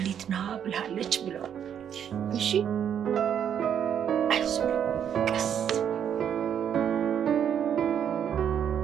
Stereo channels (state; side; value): quieter; left; 8.8 dB